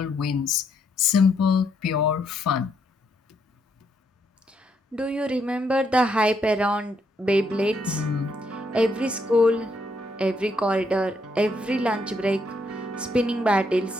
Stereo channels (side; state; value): both; normal; correlation 0.75